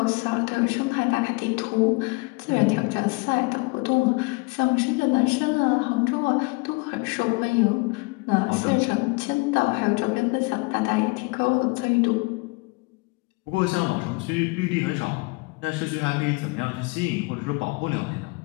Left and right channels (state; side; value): quieter; right; 28.2 dB